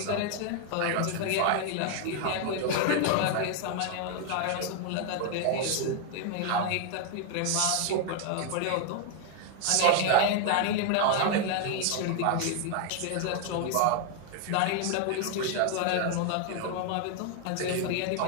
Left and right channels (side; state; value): both; different; correlation 0.00